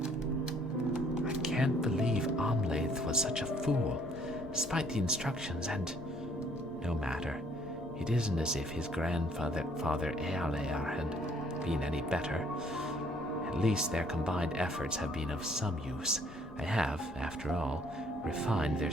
I can't believe Amlath was such a fool, despite the instructions, and no matter. It isn't as if his grandfather, Father Ealear, had been any better. At least their combined efforts have been of some use. I have, after all, refined their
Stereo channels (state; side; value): normal; both; correlation 0.62